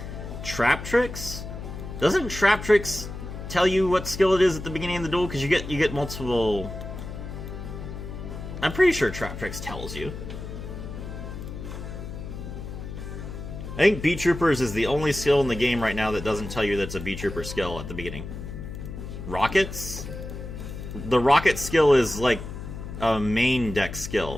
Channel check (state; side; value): noise; left; hum, 9 dB below the sound